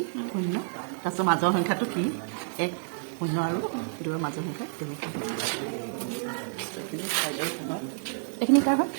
0 তাৰপিছত মাজৰ সংখ্যাটো কি 1 0 আৰু 2ৰ মাজৰ সংখ্যা তেনেকৈ এইখিনি কাৰ হয়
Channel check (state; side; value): silent; left; digital silence